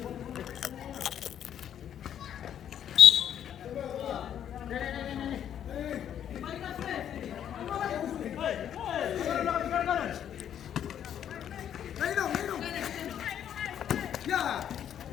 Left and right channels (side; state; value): right; quieter; 9.7 dB